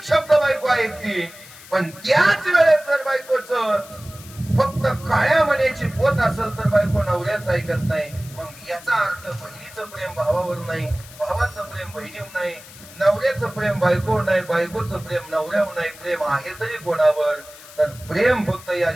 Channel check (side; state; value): left; noise; hiss, 19 dB below the sound